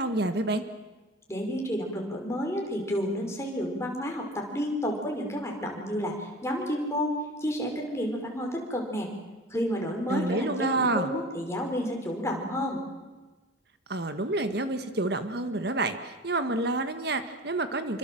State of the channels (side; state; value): both; normal; correlation 0.38